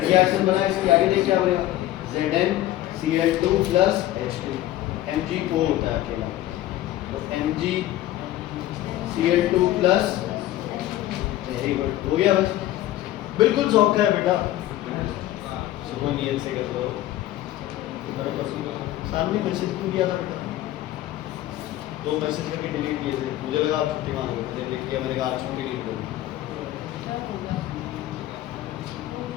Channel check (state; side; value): quieter; right; 14.4 dB